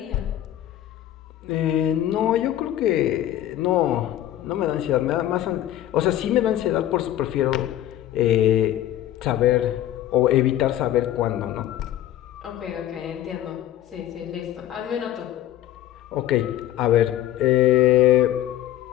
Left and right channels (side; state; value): right; quieter; 12.7 dB